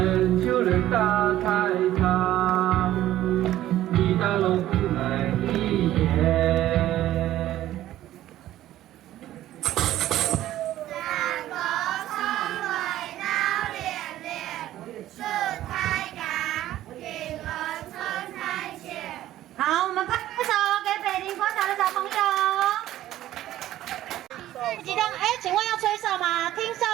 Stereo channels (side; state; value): left; quieter; 13.8 dB